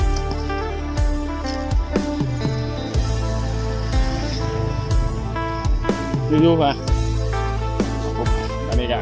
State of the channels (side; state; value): both; identical; correlation 1.00